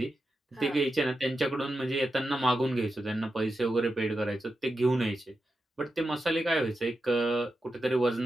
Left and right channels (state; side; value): normal; both; correlation 0.89